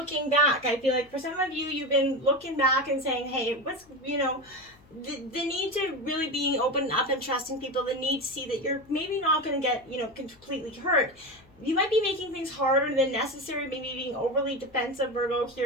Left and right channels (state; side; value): noise; left; hum, 28 dB below the sound